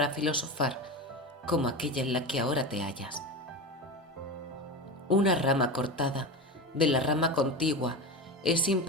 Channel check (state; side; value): normal; both; correlation 0.24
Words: filosofar como aquella en la que ahora te hallas? Una rama cortada de la rama contigua, es